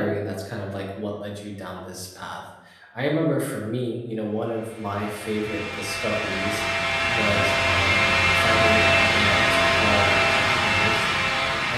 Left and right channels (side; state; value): both; identical; correlation 1.00